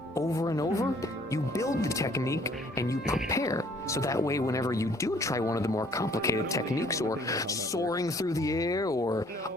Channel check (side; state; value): both; normal; correlation 0.59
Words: over and over, you build the technique and you prepare. So that way, whenever you do try one of the more complicated techniques, or soaring through the air, or